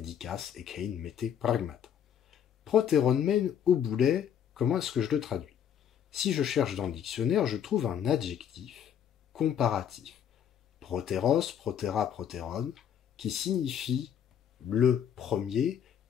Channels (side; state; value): right; quieter; 8.8 dB